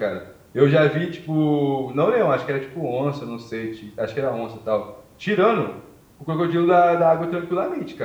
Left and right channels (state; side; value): identical; both; correlation 1.00